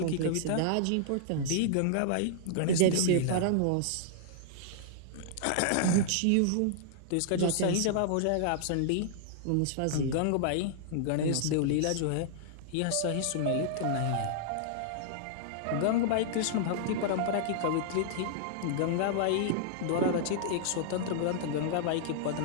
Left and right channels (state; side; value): different; both; correlation -0.01